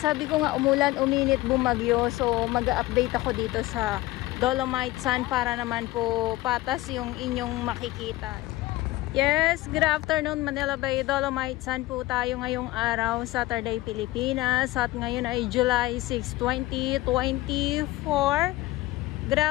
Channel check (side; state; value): right; quieter; 18.4 dB